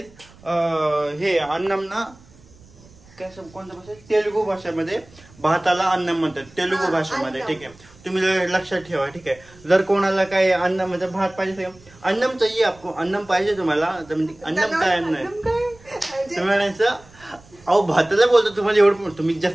हे अन्नम ना काय कोणत्या भाषेत, तेलुगू भाषेमध्ये भाताला अन्नम म्हणतात, तेलुगू भाषेमध्ये. ठीक आहे, तुम्ही लक्षात ठेवा. ठीक आहे. जर कोणाला काय अन्न म्हणजे भात पाहिजे, अन्नम चाहिए आपको, अन्नम पाहिजे तुम्हाला, अन्नम काय अन्न आहे तुम्ही म्हणायचं. अहो भाताला बोलतो तुम्हाला एवढं, तुम्ही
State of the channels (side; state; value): right; noise; rumble, 25 dB below the sound